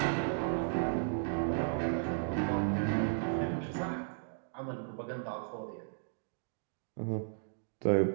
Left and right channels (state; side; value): silent; left; digital silence